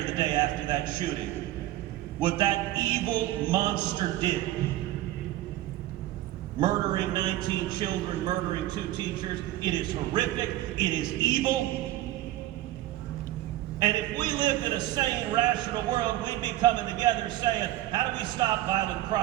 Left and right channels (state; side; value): quieter; left; 15.2 dB